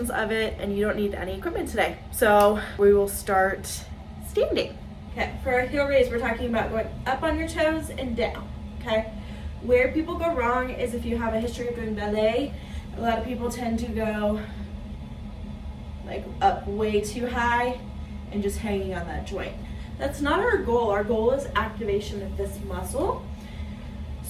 of it, and you don't need any equipment today. So we will start standing. Okay, for a heel raise, we're talking about going up on your toes and down, okay? Where people go wrong is if you have a history of doing ballet, a lot of people tend to go like up way too high and just hanging on that joint. That's not our goal. Our goal is activation of this muscle.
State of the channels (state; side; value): identical; both; correlation 1.00